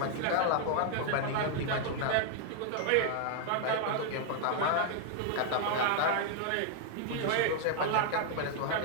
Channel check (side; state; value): both; different; correlation 0.00